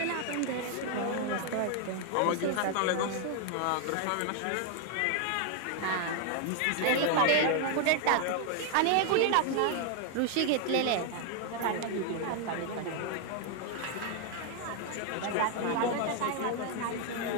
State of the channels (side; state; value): both; different; correlation 0.00